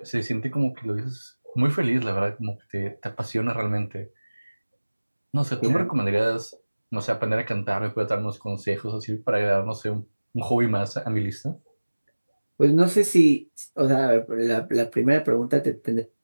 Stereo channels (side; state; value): both; inverted; correlation -1.00